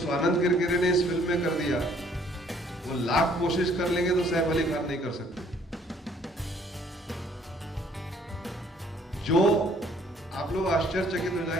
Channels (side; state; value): both; normal; correlation 0.61